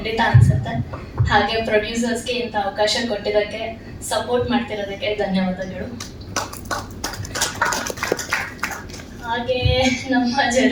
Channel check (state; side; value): identical; both; correlation 1.00